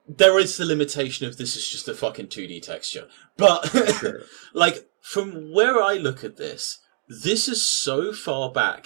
there is the limitation of this is just a fucking 2D texture, but Sure. like from where I look at this is so far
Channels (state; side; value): silent; left; digital silence